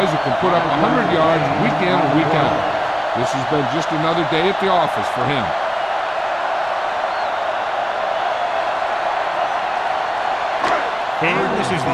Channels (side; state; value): both; identical; correlation 1.00